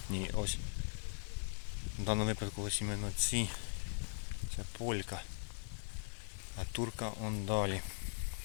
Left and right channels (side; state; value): right; silent; digital silence